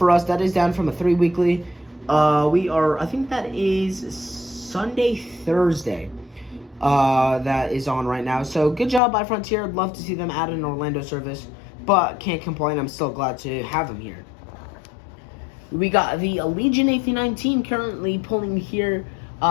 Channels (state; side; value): drops out; right; at 9.0 s